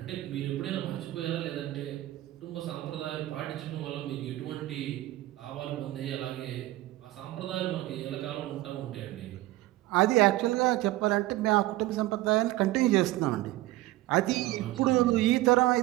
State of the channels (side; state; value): left; quieter; 17.1 dB